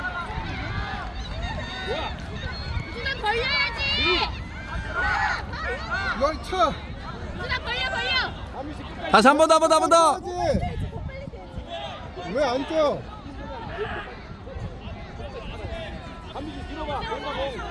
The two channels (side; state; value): both; identical; correlation 1.00